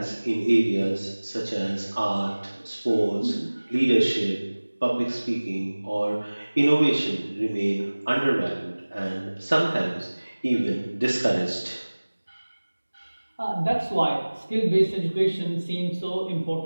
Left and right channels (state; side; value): inverted; both; correlation -1.00